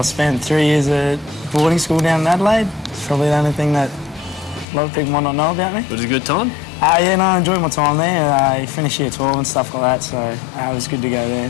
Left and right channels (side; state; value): right; drops out; at 4.7 s